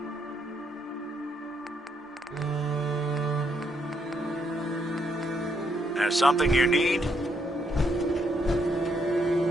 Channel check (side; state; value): both; normal; correlation 0.75